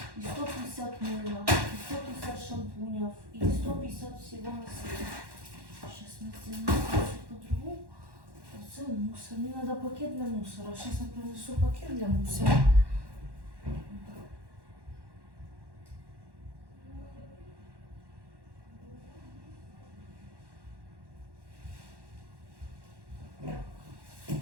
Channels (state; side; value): late; left; 1.1 ms